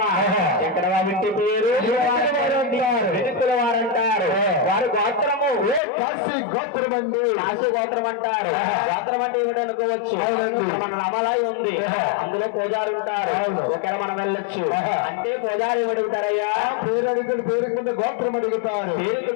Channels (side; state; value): right; drops out; at 5.8 s